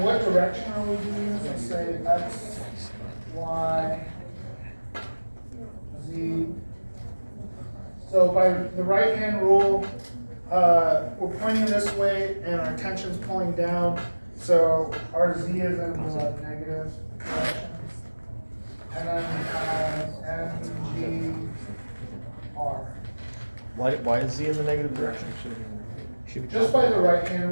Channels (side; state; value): both; inverted; correlation -1.00